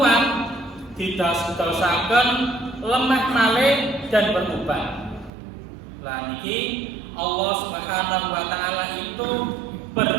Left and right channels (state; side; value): drops out; left; at 5.3 s